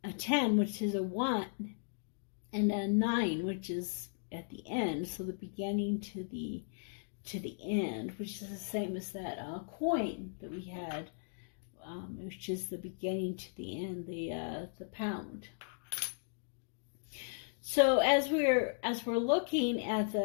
10, which is a 1, and a 9, which is at the end, so the beginning to the end, which is the same as that coin that we had, which is the beginning to the end, the pound. So as we're looking at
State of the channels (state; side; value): silent; right; digital silence